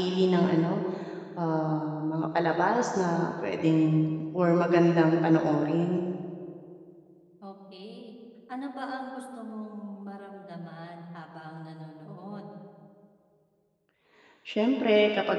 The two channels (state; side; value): identical; both; correlation 1.00